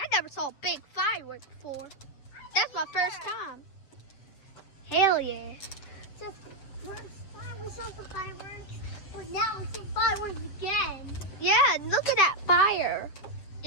never saw a big firework before. That's my first time. Hell yeah. So, first time we saw some fireworks, but now we see fireworks again. Yeah, look at that fire.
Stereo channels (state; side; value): late; right; 7.4 ms